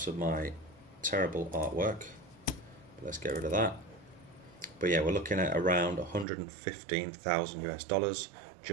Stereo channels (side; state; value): left; drops out; at 6.2 s